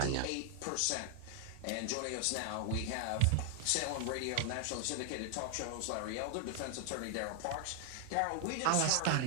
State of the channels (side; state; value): both; different; correlation 0.00